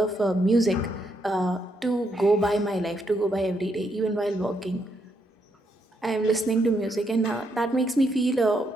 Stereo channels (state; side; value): normal; both; correlation 0.77